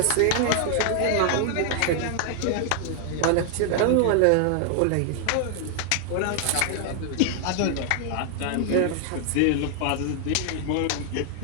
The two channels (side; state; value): both; different; correlation 0.00